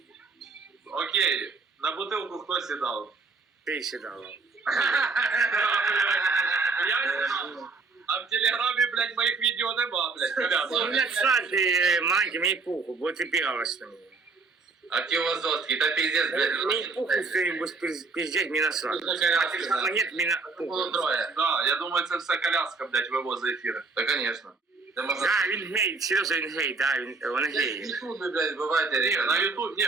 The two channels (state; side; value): quieter; left; 4.1 dB